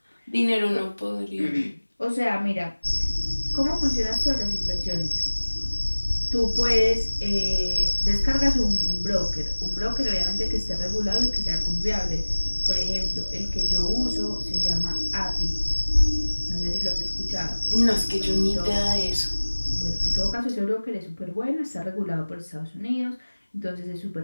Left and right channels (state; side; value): inverted; both; correlation -1.00